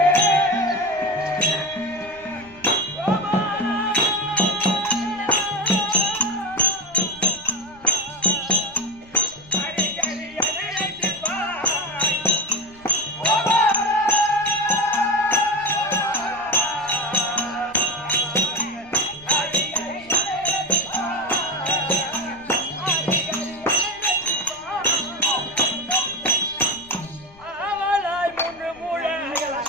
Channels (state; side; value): noise; left; rumble, 25 dB below the sound